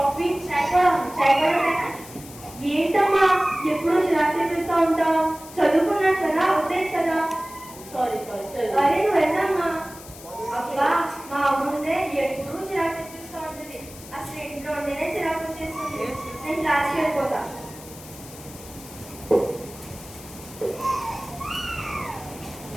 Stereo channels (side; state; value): left; noise; hiss, 17 dB below the sound